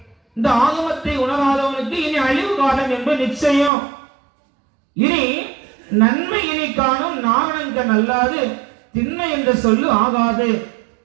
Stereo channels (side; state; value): left; drops out; at 3.7 s